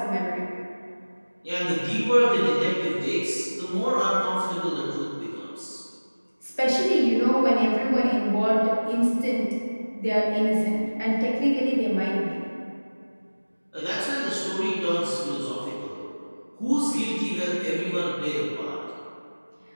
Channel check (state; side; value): inverted; both; correlation -1.00